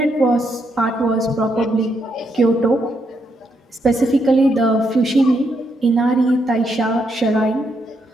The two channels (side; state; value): both; normal; correlation 0.78